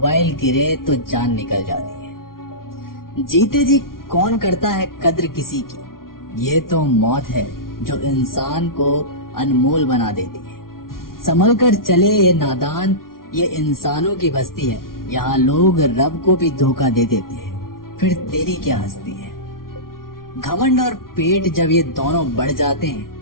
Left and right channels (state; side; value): late; right; 0.92 ms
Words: गिरे तो जान निकल जाती है। जीते जी कौन करता है कद्र किसी की, ये तो मौत है जो इंसान को अनमोल बना देती है। संभल कर चले ये नादान, ये इंसानों की बस्ती है, यहाँ लोग रब को भी धोखा दे देते हैं, फिर तेरी क्या हस्ती है। घमंड और पेट जब ये दोनों बढ़ जाते